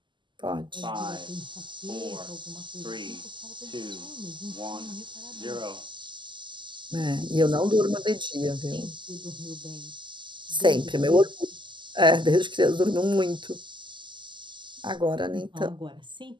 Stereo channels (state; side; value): late; left; 0.23 ms